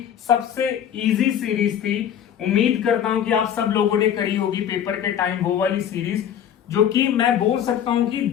सबसे इजी सीरीज थी। उम्मीद करता हूं कि आप सब लोगों ने करी होगी पेपर के टाइम वो वाली सीरीज, जो कि मैं बोल सकता हूं कि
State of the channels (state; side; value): quieter; right; 9.4 dB